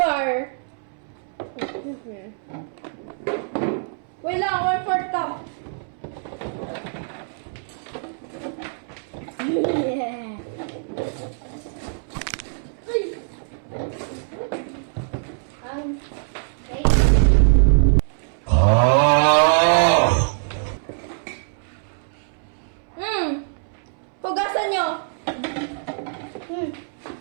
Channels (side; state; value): left; silent; 63 dB below the other